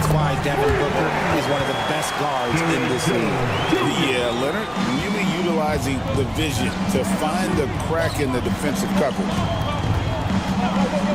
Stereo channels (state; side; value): identical; both; correlation 1.00